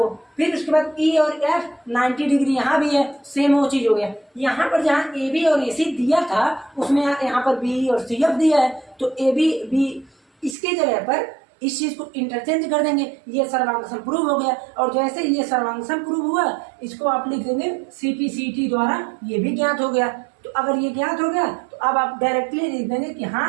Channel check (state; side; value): drops out; left; at 10.6 s